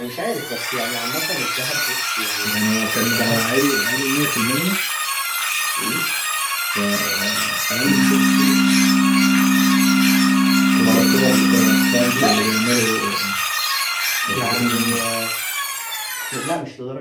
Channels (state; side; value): identical; both; correlation 1.00